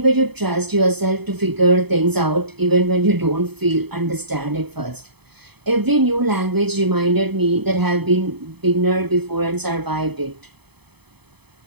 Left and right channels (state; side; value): late; left; 0.98 ms